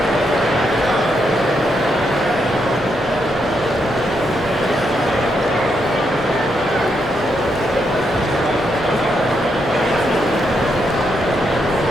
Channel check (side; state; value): both; normal; correlation 0.80